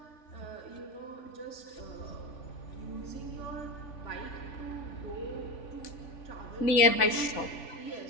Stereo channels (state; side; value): late; right; 3.5 ms